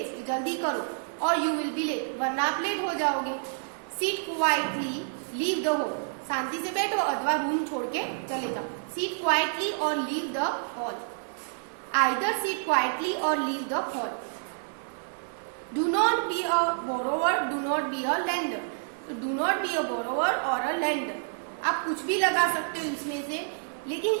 जल्दी करो, और यू विल बी लेट, वरना आप लेट हो जाओगे। Sit quietly, leave the hall, शांति से बैठो अथवा रूम छोड़ के चले जाओ। सीट क्वाइटली और leave the hall. Either sit quietly और leave the hall. Do not be a borrower, do not be a lender. तो do not be a borrower और अ लेंडर, आप कुछ भी लगा सकते हो इसमें से, लेकिन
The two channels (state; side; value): silent; left; digital silence